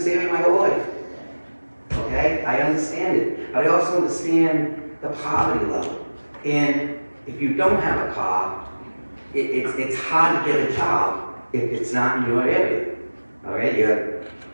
area my whole life. Okay, I understand it, but I also understand the poverty level. And if you don't have a car, it's hard to get a job if it's not in your area. All right, you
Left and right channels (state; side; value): inverted; both; correlation -1.00